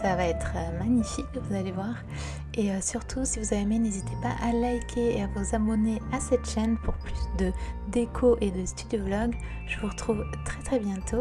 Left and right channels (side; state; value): both; identical; correlation 1.00